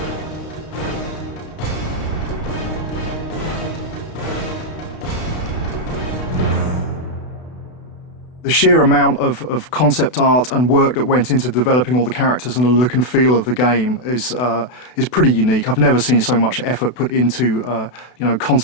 The sheer amount of concept art and work that went into developing all the characters and the look and feel of the game is pretty unique. I've never seen so much effort put into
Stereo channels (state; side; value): late; right; 32 ms